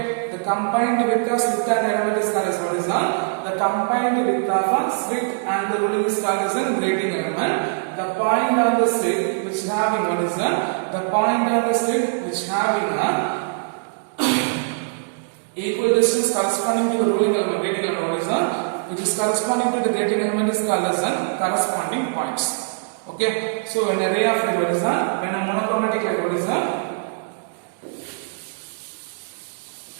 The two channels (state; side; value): silent; left; digital silence